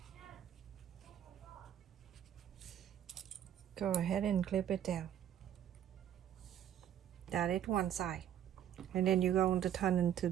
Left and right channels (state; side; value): quieter; left; 10.3 dB